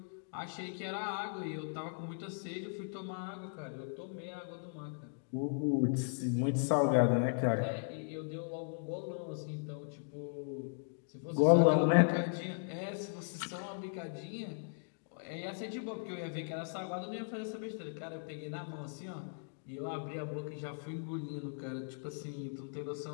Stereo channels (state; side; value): silent; right; digital silence